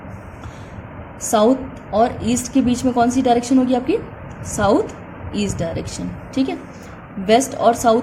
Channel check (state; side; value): identical; both; correlation 1.00